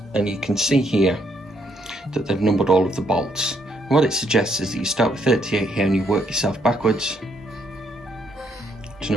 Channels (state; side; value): normal; both; correlation 0.72